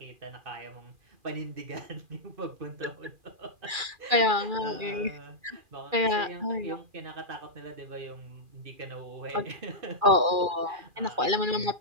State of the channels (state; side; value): late; left; 2.4 ms